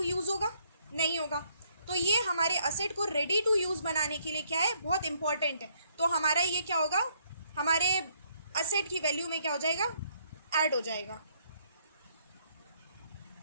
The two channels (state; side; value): inverted; both; correlation -0.68